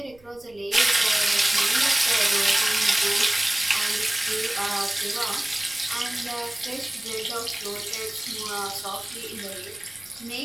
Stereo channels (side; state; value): right; noise; rumble, 27 dB below the sound